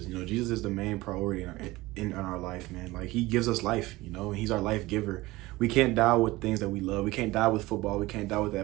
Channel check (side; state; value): left; quieter; 19.7 dB